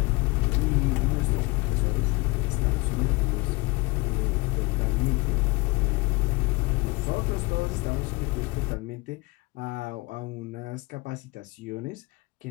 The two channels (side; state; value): right; quieter; 24.9 dB